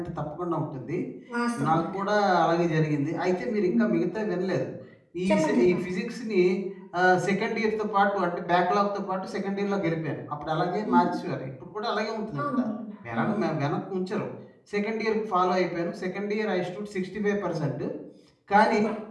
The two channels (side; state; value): both; identical; correlation 1.00